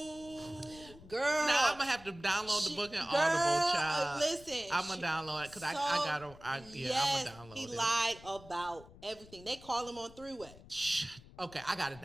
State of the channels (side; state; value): left; noise; rumble, 20 dB below the sound